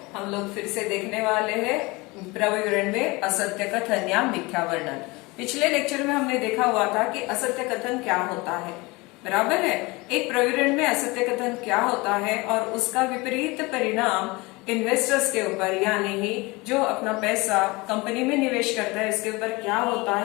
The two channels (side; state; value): right; quieter; 24.0 dB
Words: हम लोग फिर से देखने वाले हैं प्रविवरण में असत्य कथन या मिथ्या वर्णन। पिछले लेक्चर में हमने देखा हुआ था कि असत्य कथन क्या होता है, बराबर है। एक प्रविवरण में असत्य कथन क्या होता है और उसका विपरीत परिणाम इन्वेस्टर्स के ऊपर यानी ही जो अपना पैसा कंपनी में निवेश करता है इसके ऊपर क्या होता